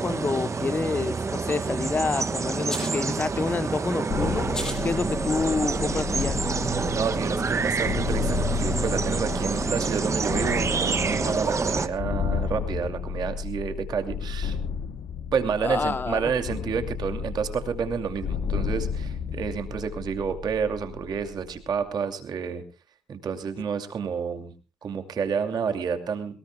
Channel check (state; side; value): normal; both; correlation 0.69